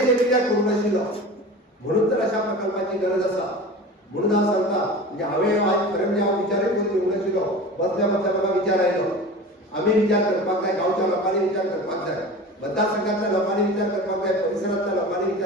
जे कित्याक करूंक नाशिल्लो. म्हणून तर अशा प्रकल्पाची गरज आसा. म्हणून हांव सांगता, म्हणजे हांवें आज खरें म्हणजे हांव विचारय करून येवंक नाशिल्लो. बसल्या बसल्या म्हाका विचार आयलो. आमी विचार करपाक जाय, गांवच्या लोकांनी विचार करपाक जाय, मतदारसंघातल्या लोकांनी विचार करपाक जाय, परिसरांतल्या लोकांनी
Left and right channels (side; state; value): both; normal; correlation 0.35